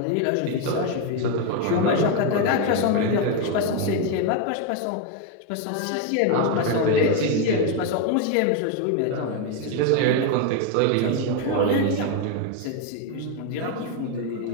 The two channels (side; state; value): both; different; correlation 0.02